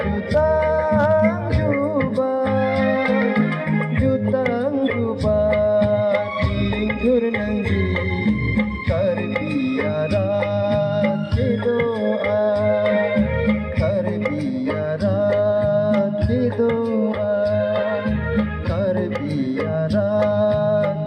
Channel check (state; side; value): identical; both; correlation 1.00